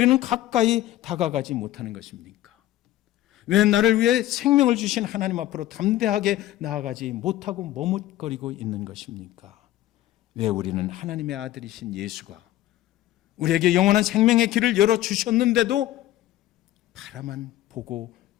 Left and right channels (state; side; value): quieter; right; 14.4 dB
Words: 가까이 다가가지 못하는 것입니까? 왜 나를 위해 생명을 주신 하나님 앞으로 담대하게 나아가지 못하고 머뭇거리고 있는 것입니까? 왜 우리는 하나님의 아들이신 예수가 우리에게 영원한 생명의 길을 열어주셨는데도 바라만 보고